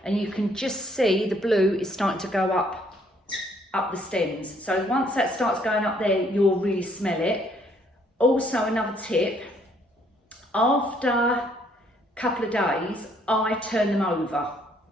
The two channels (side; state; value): both; normal; correlation 0.66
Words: and you can just see the blue is starting to go up the stems. So once that starts going up there, you'll really smell it. Also, another tip, after a couple of days, I turn them over.